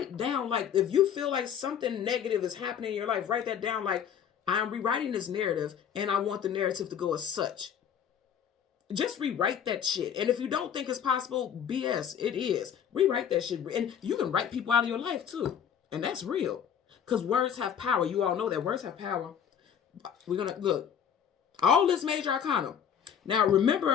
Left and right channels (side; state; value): right; quieter; 8.4 dB